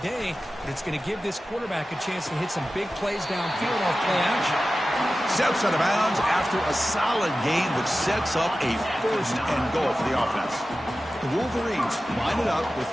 day, but it's going to give this quarterback a chance to hit some big plays downfield off play action. Steps out of bounds after a solid game, which sets up a first and goal for the offense. The Wolverines line it up with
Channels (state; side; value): normal; both; correlation 0.94